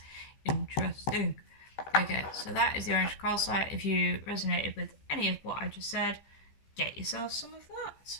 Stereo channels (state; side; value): late; right; 15 ms